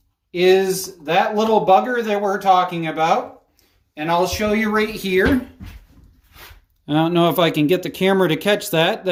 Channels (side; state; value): both; identical; correlation 1.00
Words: is that little bugger that we're talking about. And I'll show you right here. I don't know if I can get the camera to catch that.